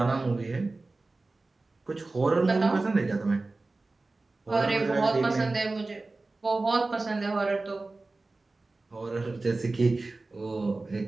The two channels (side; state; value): left; quieter; 3.3 dB